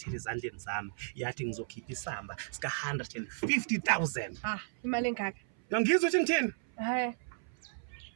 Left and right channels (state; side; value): silent; left; 55 dB below the other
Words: ezandleni zami yathi ngizokhipha isamba sika 150,000. Imali engaka? Ngizwe ukuthi ngithini?